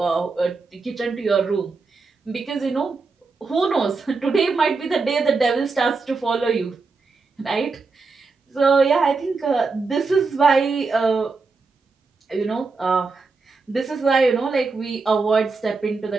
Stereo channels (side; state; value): left; quieter; 4.2 dB